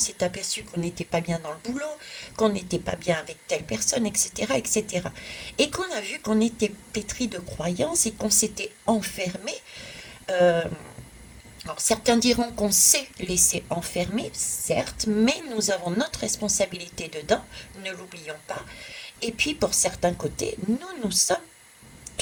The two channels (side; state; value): both; identical; correlation 1.00